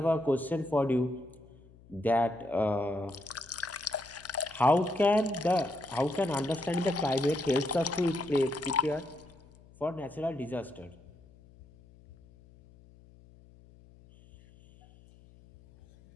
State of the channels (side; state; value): left; noise; hum, 25 dB below the sound